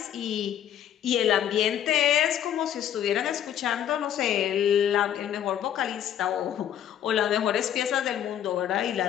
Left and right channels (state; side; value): quieter; right; 10.2 dB